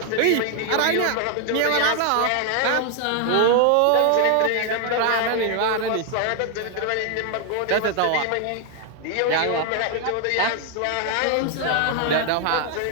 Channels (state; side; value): different; both; correlation 0.00